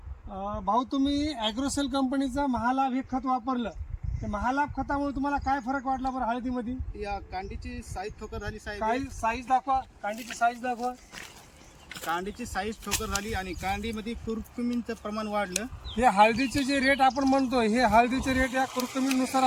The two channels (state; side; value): identical; both; correlation 1.00